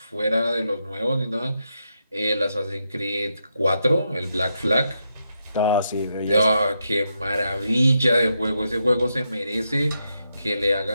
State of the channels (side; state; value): both; inverted; correlation -0.83